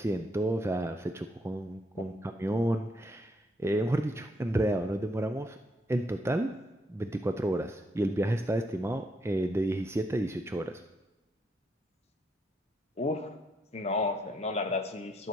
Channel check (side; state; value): both; normal; correlation 0.75